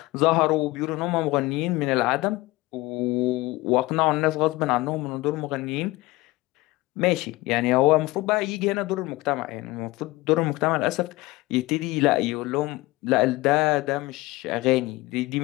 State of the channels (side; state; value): right; quieter; 20.4 dB